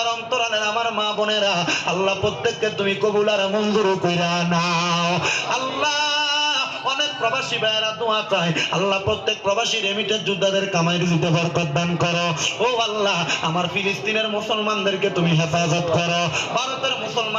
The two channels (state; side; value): identical; both; correlation 1.00